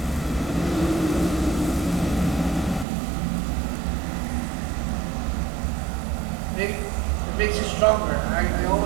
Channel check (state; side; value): drops out; left; at 2.9 s